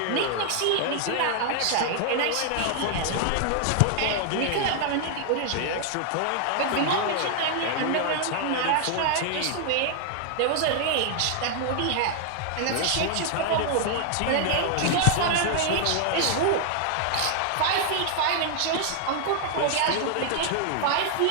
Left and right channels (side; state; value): both; different; correlation 0.00